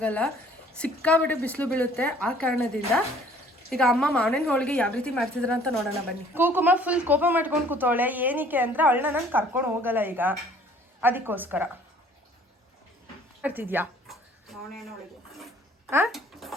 ಸಿಕ್ಕಾಬಿಟ್ಟೆ ಬಿಸಿಲು ಬೀಳುತ್ತೆ. ಆ ಕಾರಣದಿಂದ ಈಗ ಅಮ್ಮ ಮಾವಿನ ಹೋಳಿಗೆ ಯಾವ ರೀತಿ ಮಾಡ್ತಿದ್ರ ಅಂತ ನೋಡೋಣ ಬನ್ನಿ. ಕುಕುಮ ಫುಲ್ ಕೋಪ ಮಾಡ್ಕೊಂಡು ಕೂತವಳೆ. ಏನಕ್ಕೆ ಅಂದರೆ ಅವಳನ್ನ ನಾನು ಕರ್ಕೊಂಡು ಹೋಗಲ್ಲ ಈಗ, ಅದಕ್ಕೋಸ್ಕರ. ಮಾಡ್ತಿದ್ಯಾ ಮಾವಿನ ಹೋಳಿಗೆ? ಹಾಂ,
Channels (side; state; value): both; normal; correlation 0.55